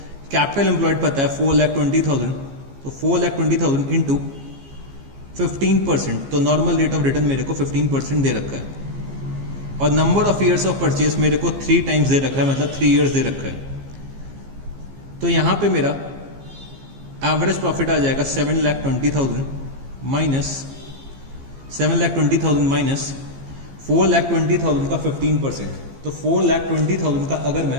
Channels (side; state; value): left; late; 15 ms